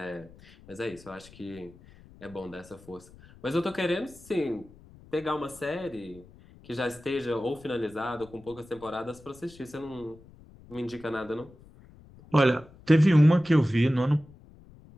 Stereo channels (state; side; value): noise; left; rumble, 23 dB below the sound